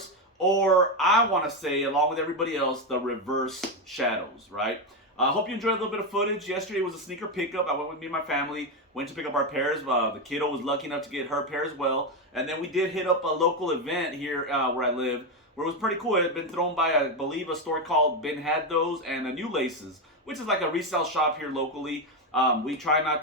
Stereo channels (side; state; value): both; normal; correlation 0.09